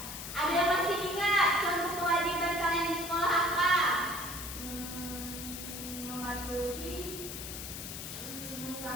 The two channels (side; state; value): left; noise; hiss, 8 dB below the sound